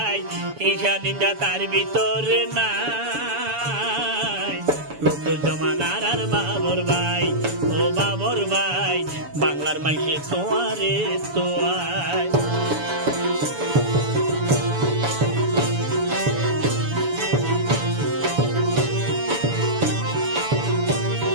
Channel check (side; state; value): left; late; 7.0 ms